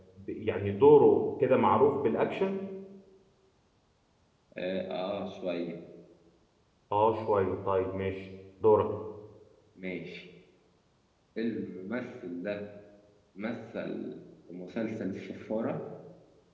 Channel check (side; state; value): both; identical; correlation 1.00